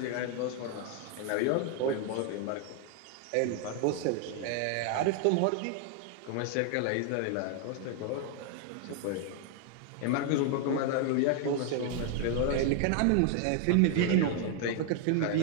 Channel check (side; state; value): both; different; correlation 0.00